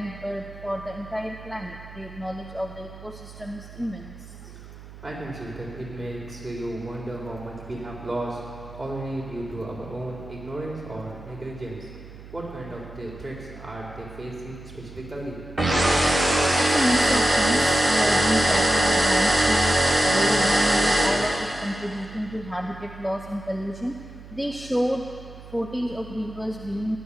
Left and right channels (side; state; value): right; noise; hum, 16 dB below the sound